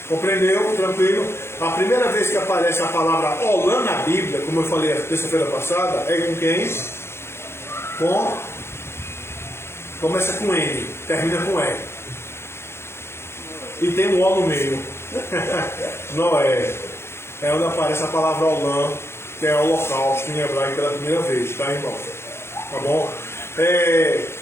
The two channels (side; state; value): right; late; 0.12 ms